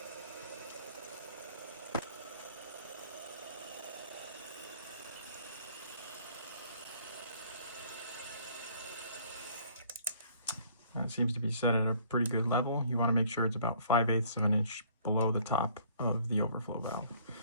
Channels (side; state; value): both; inverted; correlation -0.57